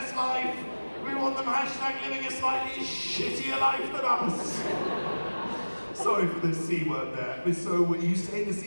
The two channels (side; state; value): both; inverted; correlation -1.00